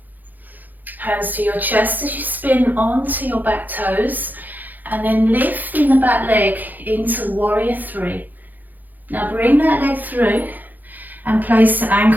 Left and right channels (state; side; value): late; left; 0.084 ms